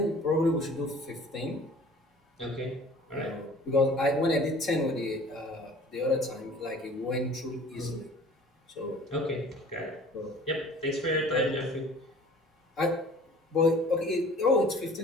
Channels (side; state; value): both; normal; correlation 0.48